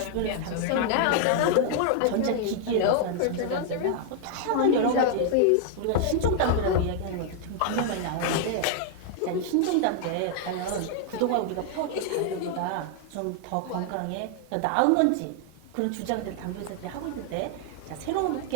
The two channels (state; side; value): different; both; correlation 0.00